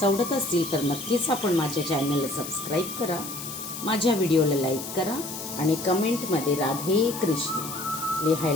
आवडत असतील तर नक्कीच आपण माझ्या चॅनलला सबस्क्राईब करा, माझ्या व्हिडिओला लाईक करा आणि कमेंटमध्ये राधे कृष्ण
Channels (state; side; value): noise; left; hiss, 9 dB below the sound